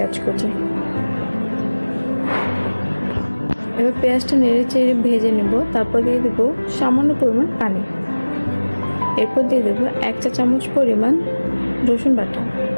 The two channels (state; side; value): inverted; both; correlation -1.00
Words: কুচি। এবার পেঁয়াজটা নেড়ে চেড়ে ভেজে নেব। তারপর দিয়ে দেবো সামান্য পরিমাণ পানি। এরপর দিয়ে দেবো 1 চা চামচ পরিমাণ রসুন বাটা।